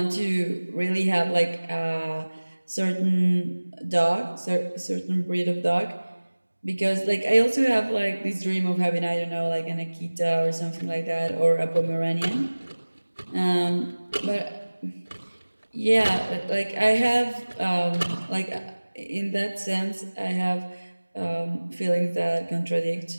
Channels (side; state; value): both; inverted; correlation -1.00